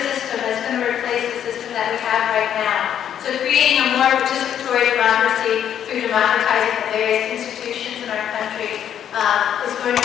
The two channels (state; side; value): quieter; right; 9.6 dB